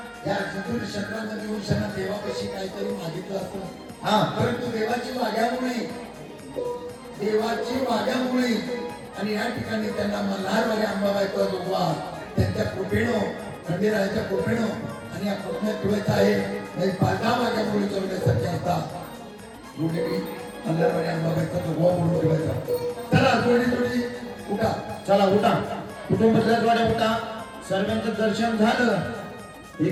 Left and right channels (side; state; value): both; identical; correlation 1.00